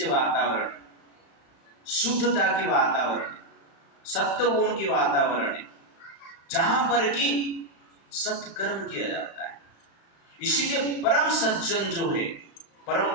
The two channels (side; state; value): right; late; 35 ms